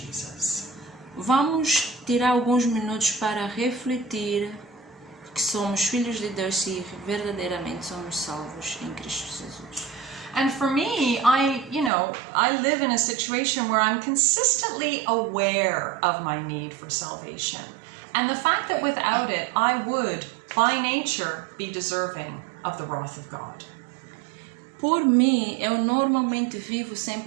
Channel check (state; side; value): drops out; left; at 11.9 s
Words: Vamos tirar alguns minutos para refletir que somos filhos de Deus e verdadeiramente somos salvos em Cristo Jesus. And for me, I live in a situation where I'm consistently aware of my need for salvation. And the fact that without it, I would, by nature, be deserving of the wrath of God. Por mim, eu normalmente vivo